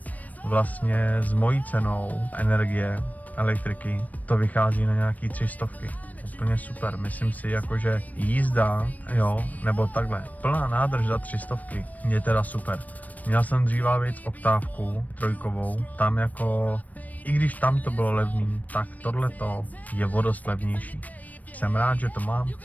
vlastně s mojí cenou energie, elektriky, to vychází na nějaký 300. Úplně super, myslím si jako, že jízda, jo, nebo takhle, plná nádrž za 300 je teda super. Měl jsem dříva víc oktávku trojkovou, tam jako, i když tam to bylo levný, tak tohleto je o dost levnější. Jsem rád, že to mám.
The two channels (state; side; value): late; right; 0.075 ms